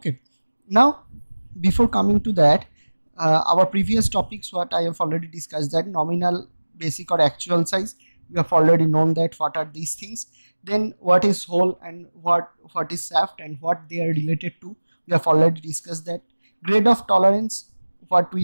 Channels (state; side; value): inverted; both; correlation -1.00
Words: now before coming to that, our previous topics what I have already discussed, that nominal, basic or actual size, we have already known that what are these things. Then what is hole and what is shaft and what they are related to, we have already discussed that. Grade of tolerance, what